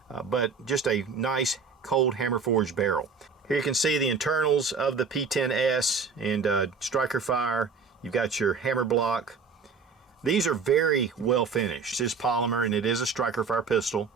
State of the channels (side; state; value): left; quieter; 5.1 dB